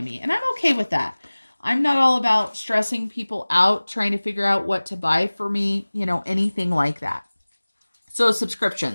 me. And I'm okay with that. I'm not all about stressing people out, trying to figure out what to buy for me, anything like that. So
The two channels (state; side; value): inverted; both; correlation -1.00